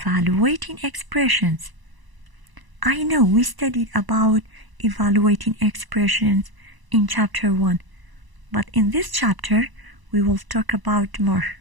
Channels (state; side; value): late; left; 1.0 ms